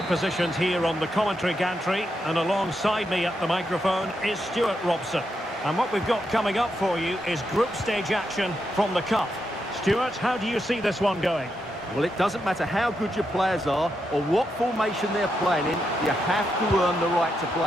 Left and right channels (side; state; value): both; normal; correlation 0.83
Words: positioned here on the commentary gantry, and alongside me at the microphone is Stuart Robson. And what we've got coming up for you is group stage action from the Cup. Stuart, how do you see this one going? Well, it doesn't matter how good your players are or what formation they're playing in, you have to earn the right to